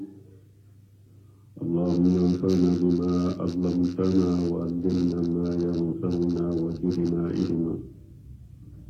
اللهم انفعنا بما علمتنا وعلمنا ما ينفعنا وزدنا علما.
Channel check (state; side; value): identical; both; correlation 1.00